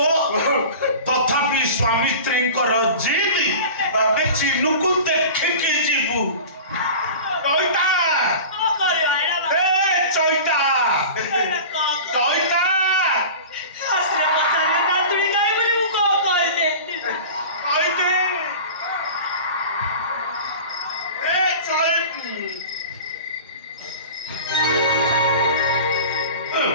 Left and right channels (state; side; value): inverted; both; correlation -0.36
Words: तथापि स्वामी स्त्री जिद चिन्नू को देखिके जीवु चैता ए चैता चैता आसरे पचारे नातुड़ी गाई बोली मु को कहले चैते ए चैती